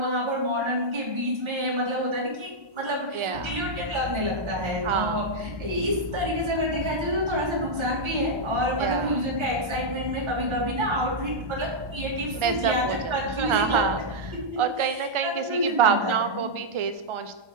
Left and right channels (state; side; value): late; left; 1.3 ms